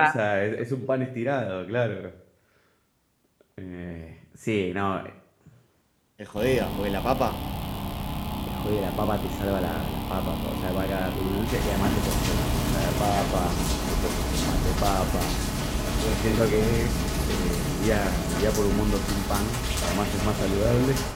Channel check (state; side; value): identical; both; correlation 1.00